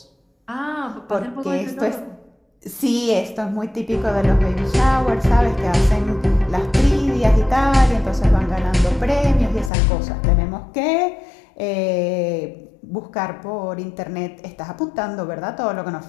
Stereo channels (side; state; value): right; drops out; at 9.7 s